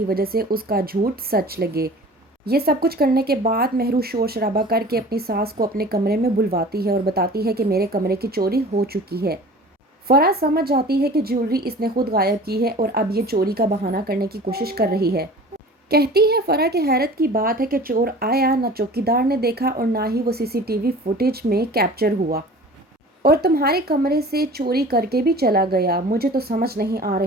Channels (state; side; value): normal; both; correlation 0.42